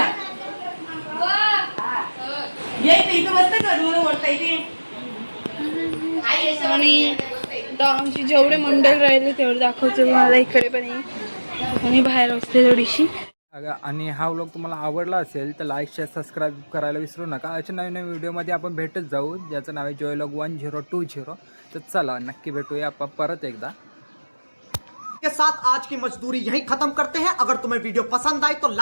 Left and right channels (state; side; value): inverted; both; correlation -1.00